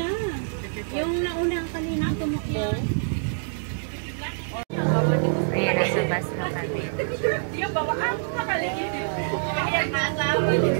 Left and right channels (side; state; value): left; silent; digital silence